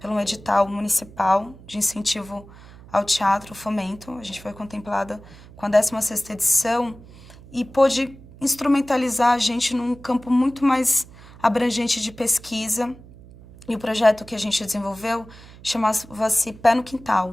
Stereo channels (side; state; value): right; noise; hum, 20 dB below the sound